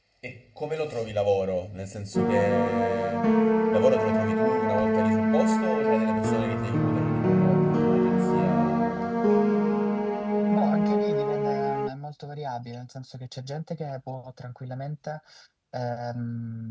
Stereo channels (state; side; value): identical; both; correlation 1.00